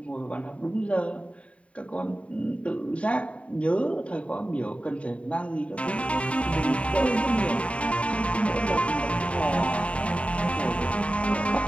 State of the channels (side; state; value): right; late; 0.064 ms